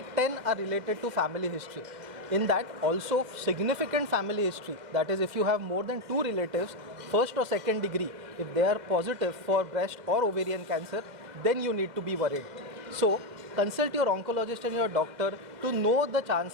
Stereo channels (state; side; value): late; left; 2.1 ms